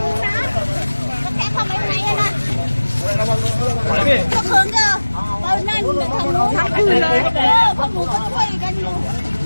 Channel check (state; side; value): inverted; both; correlation -1.00